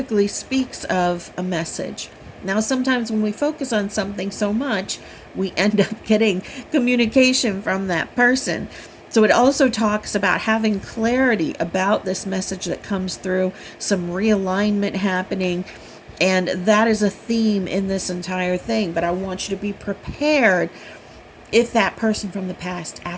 speaks of a message. Now, sometimes when we focus on something so much, we end up getting communication from that person. So it also talks about having clarity about this message that comes through, some realignment happening. And that is a theme in this entire thing. But I want you to be prepared if that person from the past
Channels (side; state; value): both; identical; correlation 1.00